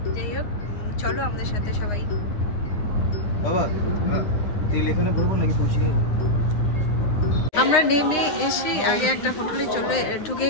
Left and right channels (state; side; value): late; right; 9.7 ms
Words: যাই হোক, চলো আমাদের সাথে সবাই। আমরা নেমে এসে আগে একটা হোটেলে ঢুকে